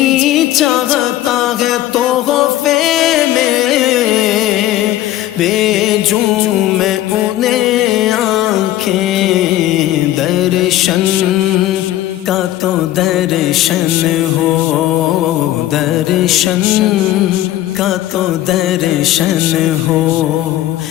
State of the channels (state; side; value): quieter; right; 13.9 dB